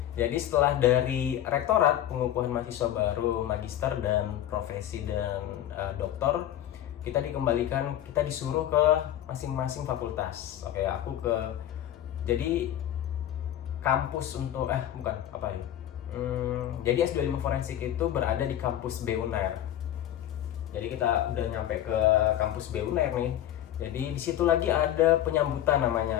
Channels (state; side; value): quieter; right; 11.8 dB